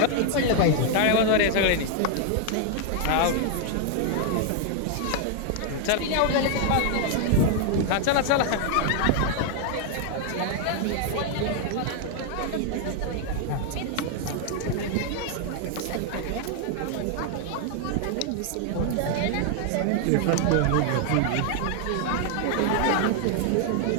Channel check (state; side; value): different; both; correlation 0.00